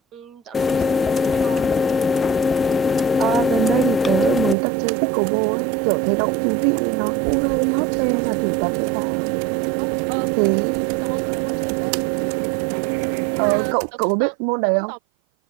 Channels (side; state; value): left; drops out; at 4.5 s